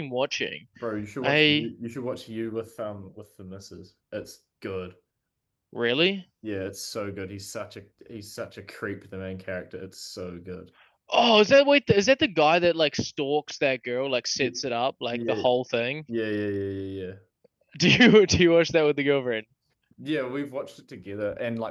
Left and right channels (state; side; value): identical; both; correlation 1.00